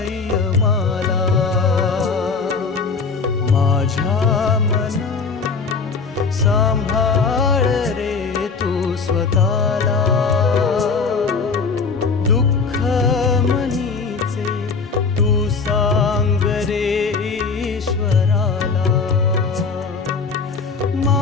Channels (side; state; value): right; quieter; 4.8 dB